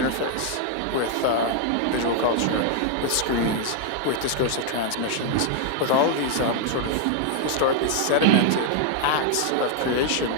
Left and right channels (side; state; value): both; different; correlation 0.00